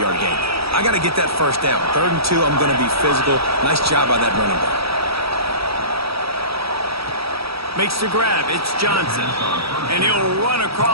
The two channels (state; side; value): late; left; 0.76 ms